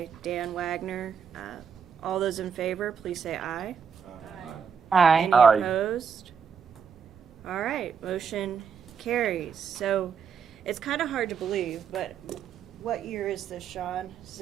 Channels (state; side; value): quieter; left; 6.7 dB